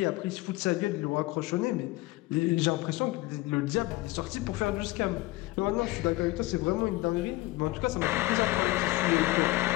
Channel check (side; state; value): right; quieter; 19.5 dB